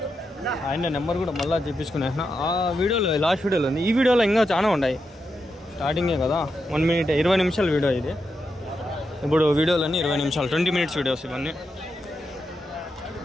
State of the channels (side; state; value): both; normal; correlation 0.86